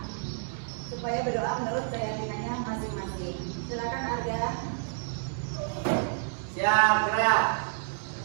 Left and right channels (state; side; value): silent; left; digital silence